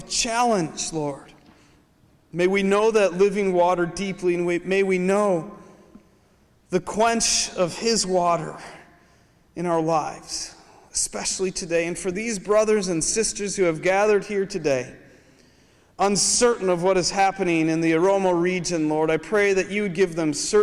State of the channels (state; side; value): identical; both; correlation 1.00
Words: challenge, Lord, may we know that living water deeply, and may we know the quench of His water in our lives, especially today. And for these brothers and sisters who have gathered here today, uncertain of what is happening in the Oromo region, Lord, I pray that you would give them